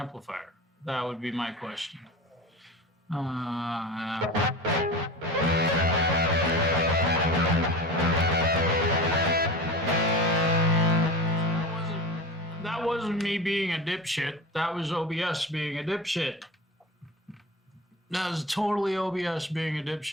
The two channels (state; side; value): normal; both; correlation 0.31